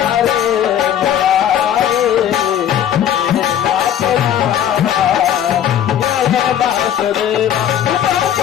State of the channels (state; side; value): quieter; right; 10.1 dB